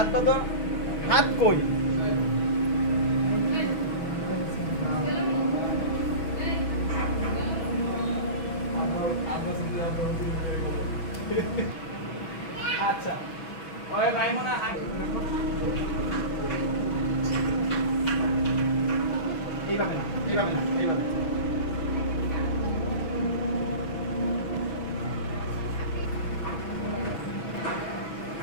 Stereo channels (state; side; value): late; right; 6.1 ms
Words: বাঁধো। হাত কই? আচ্ছা ওই মাইমুনা এইভাবে না, এইভাবে না, এইভাবে।